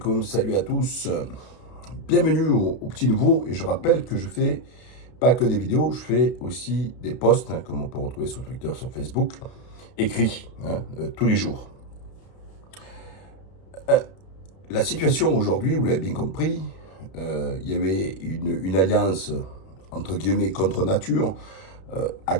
salut à tous. Bienvenue au Petit Nouveau. Et je rappelle que je fais pas que des vidéos, je fais aussi des posts, comme on peut retrouver sur Twitter, sur Facebook, écrits, tous les jours. La situation aujourd'hui, vous l'avez bien compris, il y avait une alliance, entre guillemets, contre nature, à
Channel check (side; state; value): right; late; 32 ms